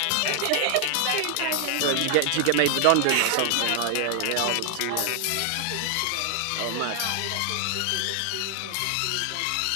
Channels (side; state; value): both; different; correlation 0.00